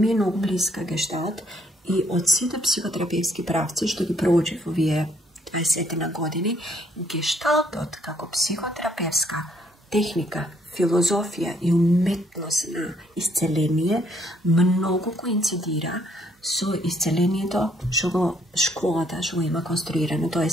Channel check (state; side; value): normal; both; correlation 0.67